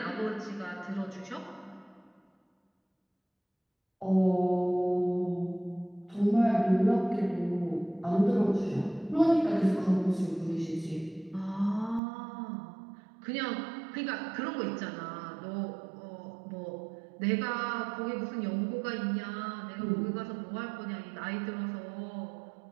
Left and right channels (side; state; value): left; drops out; at 12.0 s